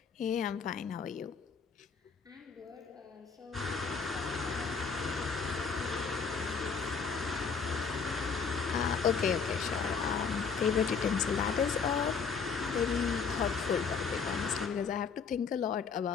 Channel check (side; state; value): right; quieter; 5.6 dB